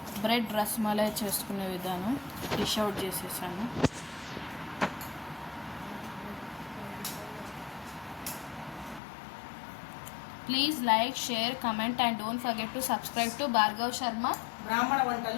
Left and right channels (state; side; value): drops out; right; at 9.0 s